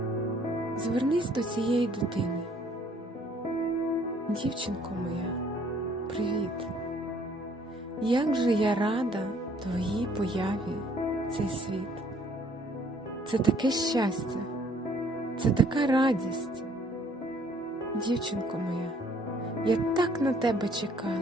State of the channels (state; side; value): normal; both; correlation 0.61